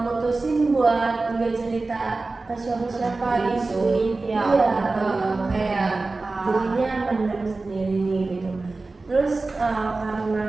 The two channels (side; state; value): left; quieter; 3.5 dB